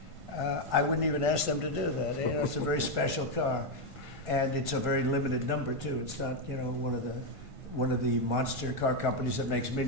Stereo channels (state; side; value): late; left; 1.5 ms